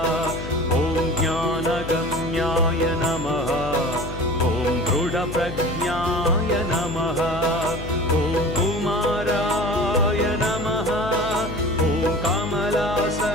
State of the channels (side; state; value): left; noise; hum, 8 dB below the sound